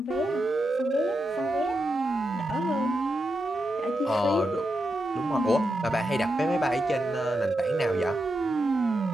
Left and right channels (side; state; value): both; normal; correlation 0.86